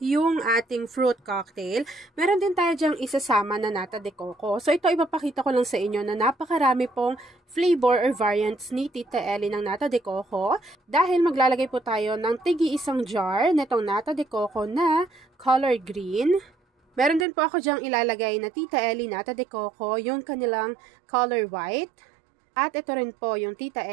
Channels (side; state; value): left; drops out; at 17.2 s